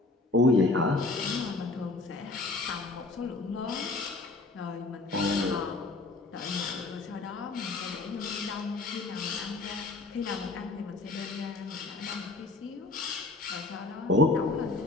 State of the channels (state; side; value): quieter; right; 3.3 dB